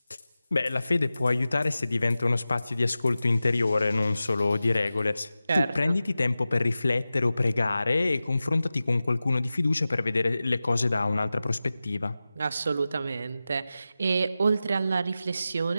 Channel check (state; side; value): inverted; both; correlation -0.94